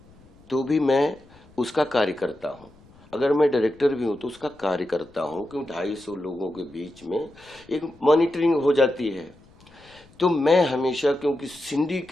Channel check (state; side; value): noise; left; rumble, 27 dB below the sound